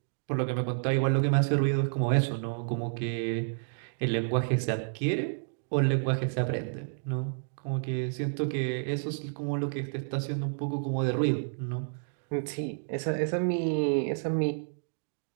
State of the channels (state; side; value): silent; left; digital silence